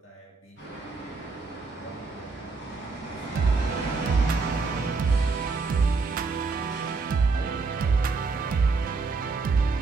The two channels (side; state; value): left; quieter; 4.3 dB